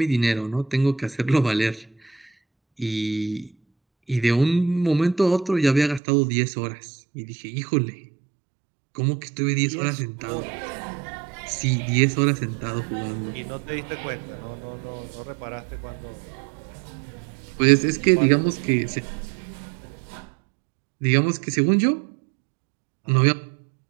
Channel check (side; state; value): left; drops out; at 6.0 s